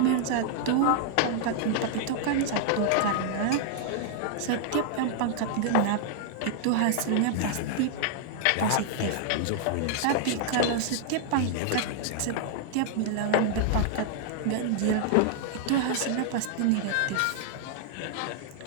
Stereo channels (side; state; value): both; different; correlation -0.01